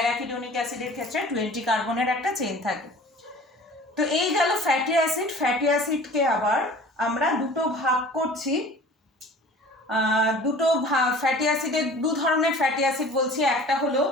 অ্যাসিডের ক্ষেত্রে 20 কার্বনের একটা চেন থাকে। তো এই গেল ফ্যাটি অ্যাসিড। ফ্যাটি অ্যাসিডকে আবার আমরা দুটো ভাগ করছি। ফ্যাটি অ্যাসিডের দু ধরনের ফ্যাটি অ্যাসিড বলছি, একটা হলো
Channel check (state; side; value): normal; both; correlation 0.44